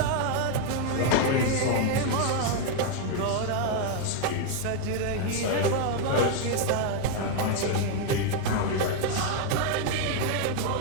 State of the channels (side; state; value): both; different; correlation 0.01